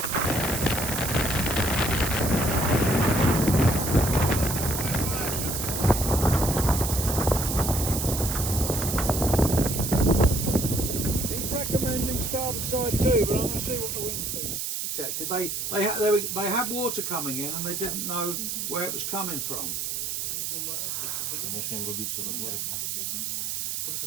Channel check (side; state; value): right; noise; hiss, 3 dB below the sound